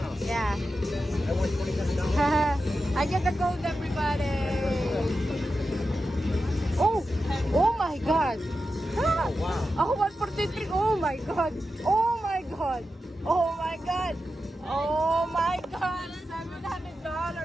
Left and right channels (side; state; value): both; normal; correlation 0.91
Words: Yeah. I won $27. I get the gold everybody. Oh! Oh my god! Oh, wow. Oh, 143. Oh my god. Oh my god. Oh my god. Oh my god.